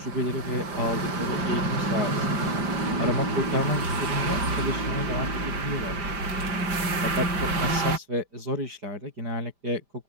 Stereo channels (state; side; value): late; left; 5.0 ms